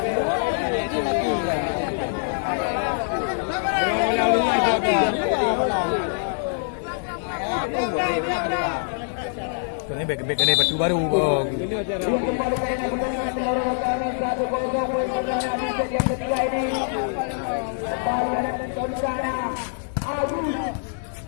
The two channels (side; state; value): right; silent; digital silence